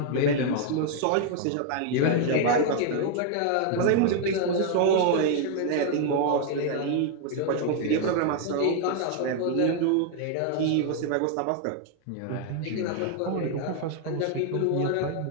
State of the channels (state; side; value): different; both; correlation 0.00